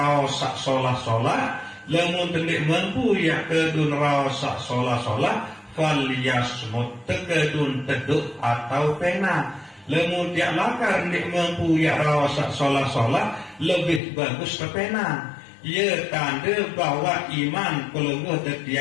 sak solah-solah, lamun tendik mampu ya kedu neraos sak solah-solah falyasmut, tekedun teduk atau pena. Lamun tiak lakar ndik mampu ya raos sak solah-solah, lebih bagus ke pena. Ia tanda bahwa iman pelungguh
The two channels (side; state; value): right; drops out; at 14.0 s